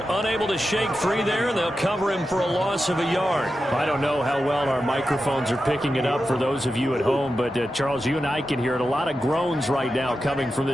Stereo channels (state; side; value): normal; both; correlation 0.90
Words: unable to shake free there, and they'll cover him for a loss of a yard. I don't know how well our microphones are picking it up for those of you at home, but Charles, you and I can hear it. A lot of groans right now coming from